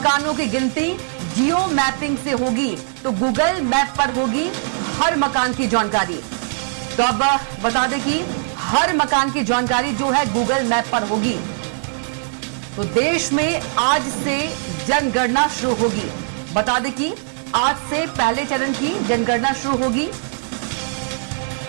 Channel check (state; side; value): silent; left; 56 dB below the other